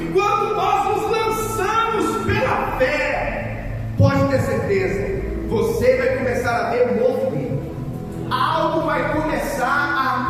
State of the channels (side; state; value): both; identical; correlation 1.00